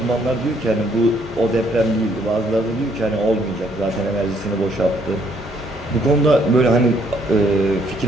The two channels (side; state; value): both; normal; correlation 0.68